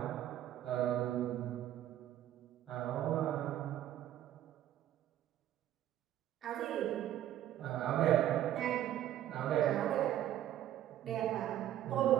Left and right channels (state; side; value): quieter; left; 12.2 dB